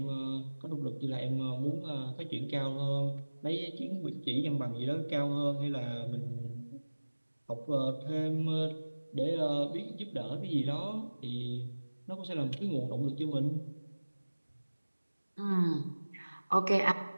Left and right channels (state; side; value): inverted; both; correlation -1.00